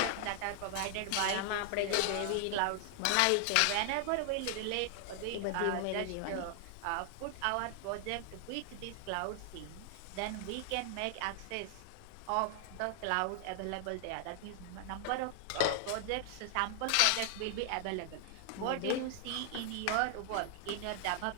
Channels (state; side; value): different; both; correlation 0.00